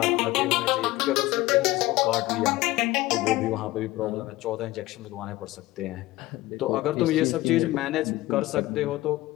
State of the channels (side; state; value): right; quieter; 18.0 dB